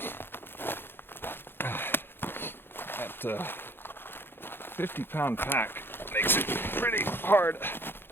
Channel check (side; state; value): right; late; 0.10 ms